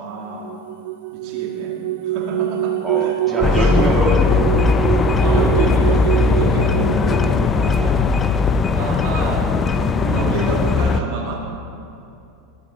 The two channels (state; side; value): normal; both; correlation 0.50